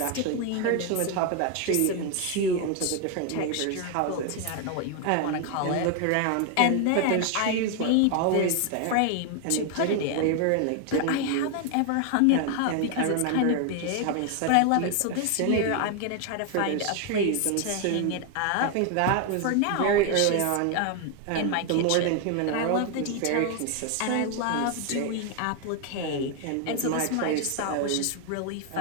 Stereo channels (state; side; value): different; both; correlation 0.00